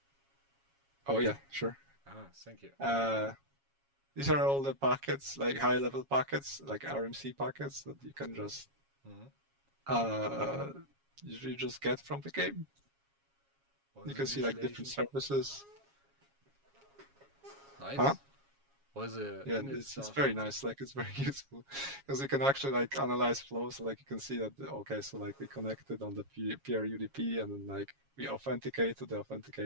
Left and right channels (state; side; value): late; left; 7.3 ms